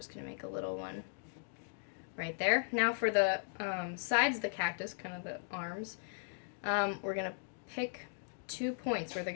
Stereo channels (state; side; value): silent; right; digital silence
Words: going to make a little one right there. Now for the sides of the cactus, kind of the arms, we're going to pick 2 points where they're